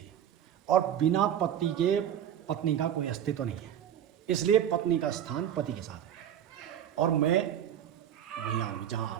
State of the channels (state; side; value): quieter; left; 9.9 dB